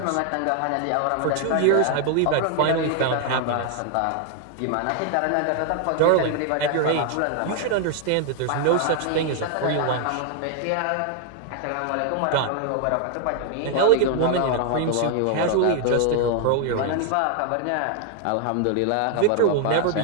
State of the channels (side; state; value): both; different; correlation 0.00